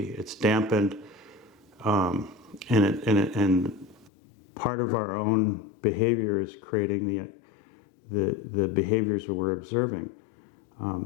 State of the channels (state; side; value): drops out; right; at 4.1 s